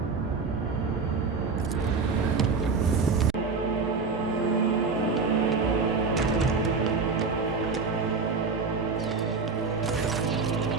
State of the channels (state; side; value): quieter; left; 4.6 dB